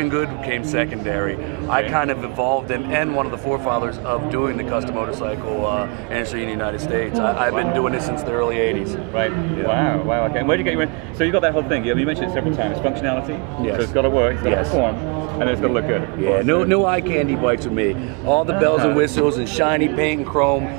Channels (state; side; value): quieter; left; 31.9 dB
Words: good became secondary. I kind of evolved and one of the forefathers of doing the custom motorcycle industry in the United States. I've been doing this since the early 80s. Right. Yeah. Wow. Okay. And where did you get you in? So you got that whole thing. You mentioned it several times. Functionality. Yes. So it's got to work. It's got to perform. And then it's got to look good. Yeah. No eye candy bikes with me. All the bells and whistles and shiny paint and chrome